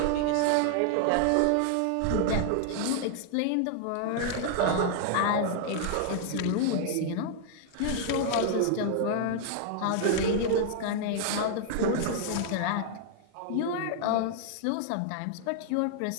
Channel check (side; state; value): both; different; correlation 0.00